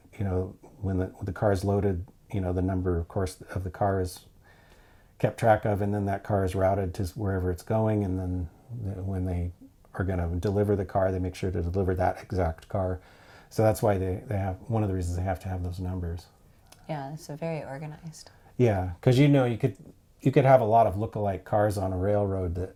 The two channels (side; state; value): both; identical; correlation 1.00